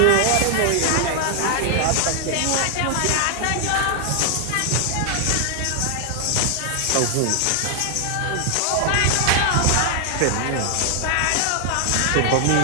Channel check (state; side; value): different; both; correlation 0.00